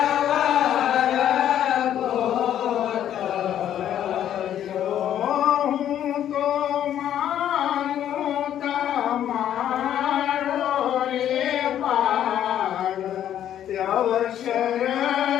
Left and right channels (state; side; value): quieter; right; 10.7 dB